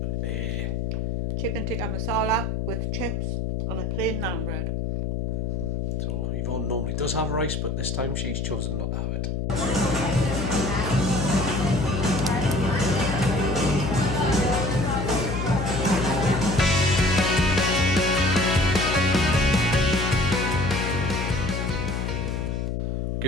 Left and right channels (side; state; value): left; noise; hum, 1 dB below the sound